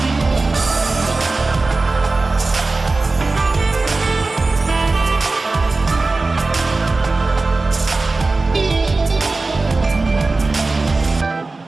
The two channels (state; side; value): quieter; left; 3.5 dB